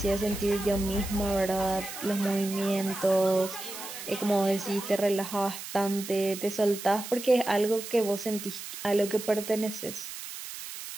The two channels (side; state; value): right; noise; hiss, 10 dB below the sound